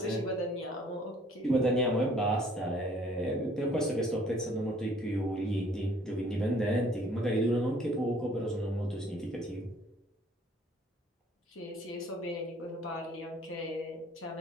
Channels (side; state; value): both; normal; correlation 0.58